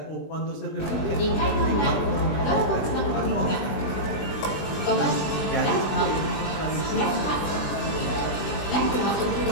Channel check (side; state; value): right; late; 20 ms